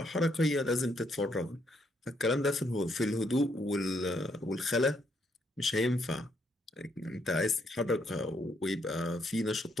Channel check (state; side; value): normal; both; correlation 0.73